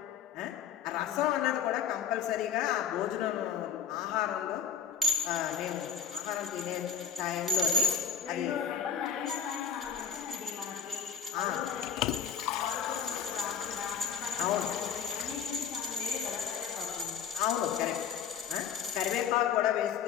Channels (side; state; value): right; quieter; 7.8 dB